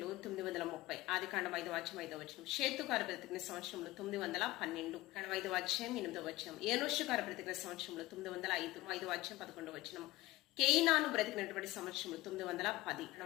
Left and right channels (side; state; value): right; quieter; 18.4 dB